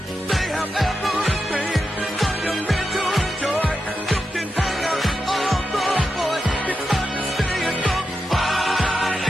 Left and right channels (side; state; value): both; normal; correlation 0.88